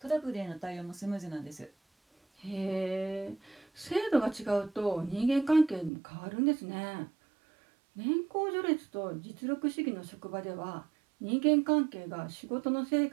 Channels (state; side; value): drops out; left; at 5.9 s